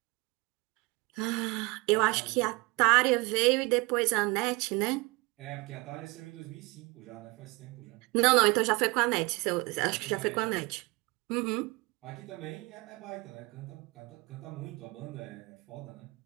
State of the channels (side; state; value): left; quieter; 25.5 dB